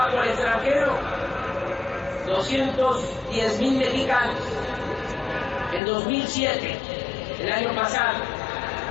al extranjero 210.000 mexicanos. En 2007, el año pasado,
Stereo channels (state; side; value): drops out; right; at 5.8 s